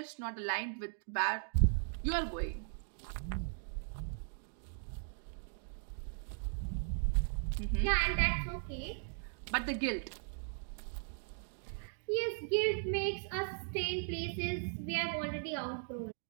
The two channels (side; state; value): left; silent; digital silence